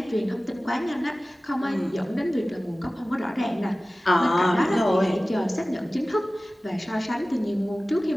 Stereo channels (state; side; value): normal; both; correlation 0.97